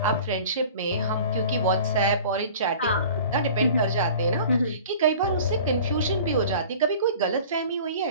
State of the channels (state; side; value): inverted; both; correlation -0.43